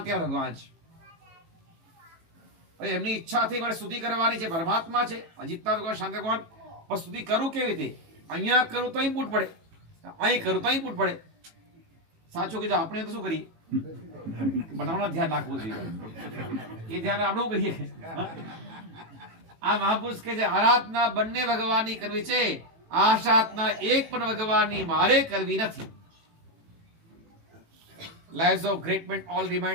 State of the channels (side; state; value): left; late; 18 ms